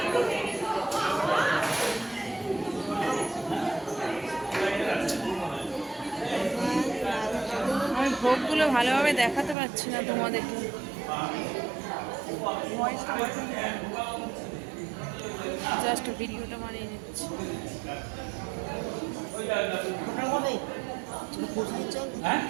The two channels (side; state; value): left; drops out; at 9.6 s